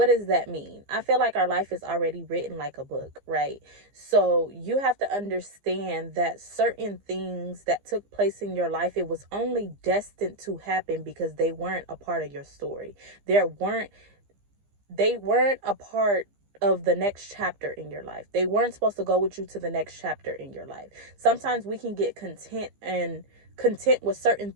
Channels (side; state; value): left; late; 15 ms